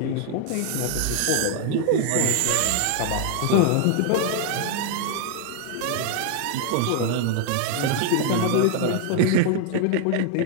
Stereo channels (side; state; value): both; different; correlation 0.00